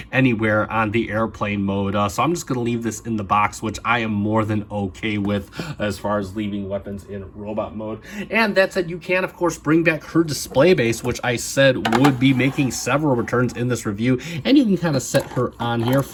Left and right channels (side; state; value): both; identical; correlation 1.00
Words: anywhere on the airplane mode, so I'm just going to leave this in the box, which I am more than okay with as far as leaving weapons in robot mode. And that said, you can, of course, bring back her display base, which I said would be making several returns in this review, and you can kind of set her on here